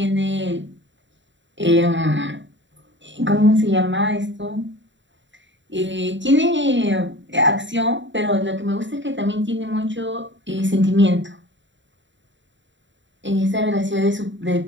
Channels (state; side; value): late; left; 0.54 ms